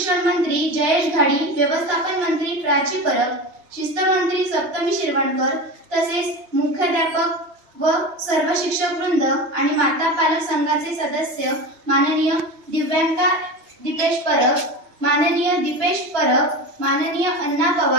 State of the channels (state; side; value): late; left; 3.0 ms